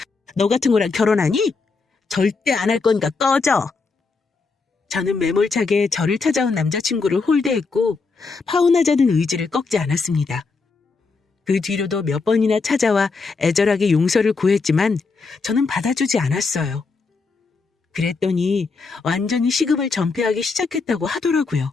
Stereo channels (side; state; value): right; quieter; 4.4 dB